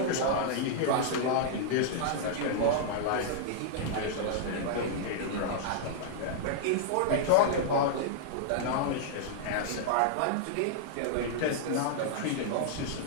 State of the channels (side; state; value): both; different; correlation -0.01